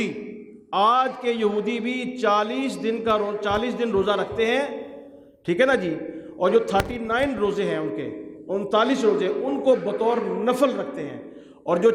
آج کے یہودی بھی 40 دن روزہ رکھتے ہیں، ٹھیک ہے نا جی۔ اور جو 39 روزے ہیں ان کے، 39 روزے ان کو بطور نفل رکھتے ہیں، اور جو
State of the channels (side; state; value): both; identical; correlation 1.00